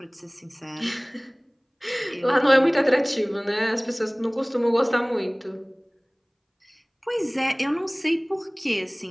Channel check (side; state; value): both; identical; correlation 1.00